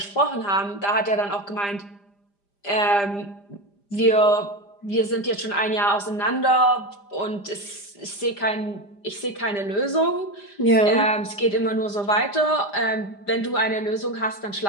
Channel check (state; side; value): late; right; 5.0 ms